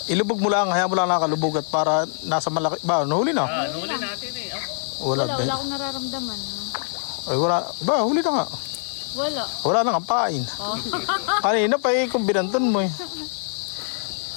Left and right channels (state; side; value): silent; right; digital silence